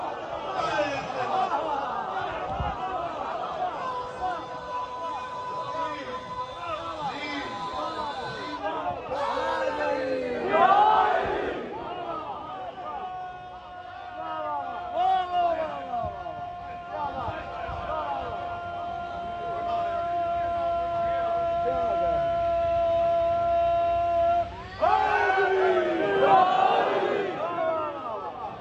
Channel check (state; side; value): identical; both; correlation 1.00